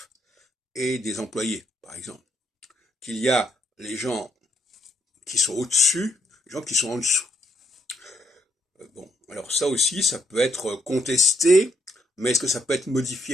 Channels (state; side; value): normal; both; correlation 0.73